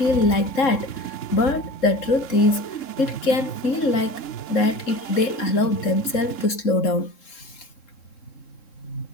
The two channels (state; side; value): late; right; 3.7 ms